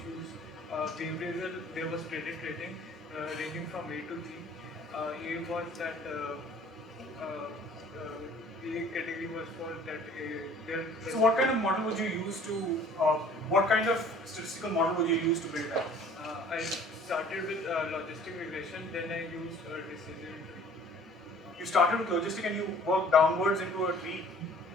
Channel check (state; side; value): normal; both; correlation 0.52